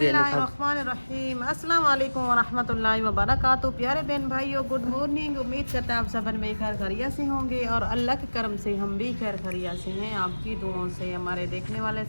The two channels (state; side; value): inverted; both; correlation -1.00